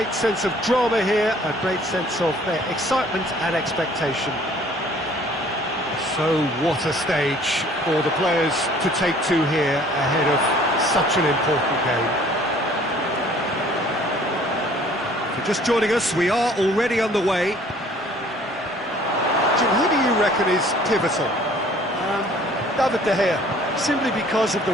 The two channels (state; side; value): normal; both; correlation 0.55